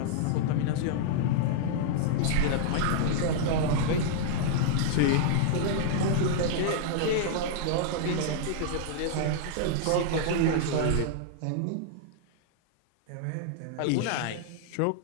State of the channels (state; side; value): different; both; correlation -0.01